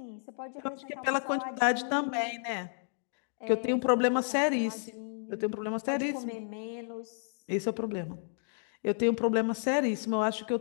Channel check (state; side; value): silent; right; digital silence